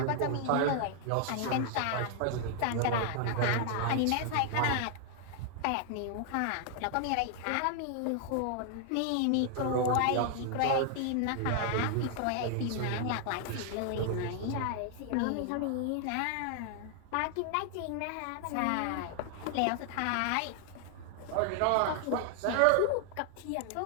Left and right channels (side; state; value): both; different; correlation 0.00